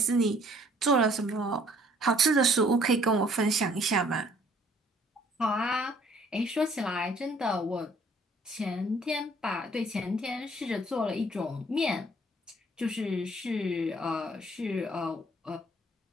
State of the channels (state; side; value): normal; both; correlation 0.60